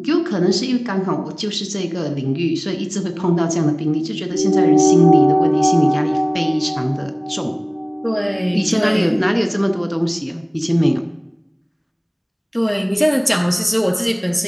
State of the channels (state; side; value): identical; both; correlation 1.00